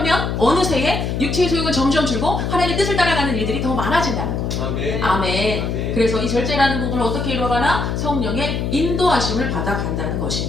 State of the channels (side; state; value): left; noise; hum, 1 dB below the sound